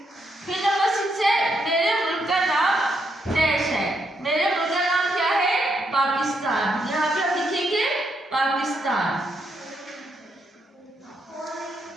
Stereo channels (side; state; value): both; normal; correlation 0.78